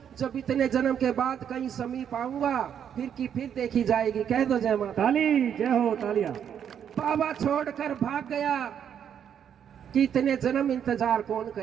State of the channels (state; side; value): quieter; left; 8.7 dB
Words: जब इतने जन्म के बाद कहीं समीप आऊंगा फिर की फिर देखी जाएगी। कह दो जय माता। ताली, जय हो, तालियां। बाबा छोड़कर भाग गया कि इतने जन्म इंतजार कौन